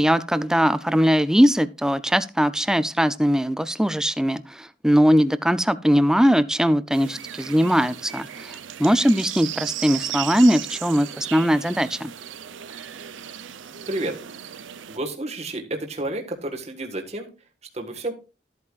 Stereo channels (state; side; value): normal; both; correlation 0.93